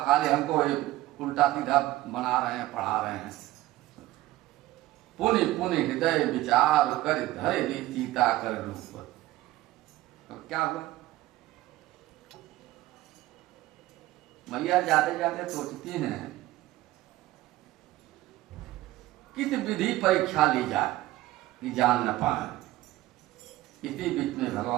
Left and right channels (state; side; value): quieter; left; 16.8 dB